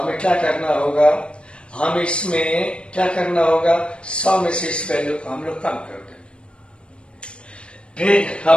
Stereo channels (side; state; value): right; late; 0.057 ms